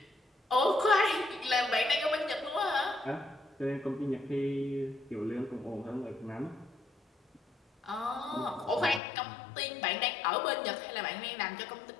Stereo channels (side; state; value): right; drops out; at 9.0 s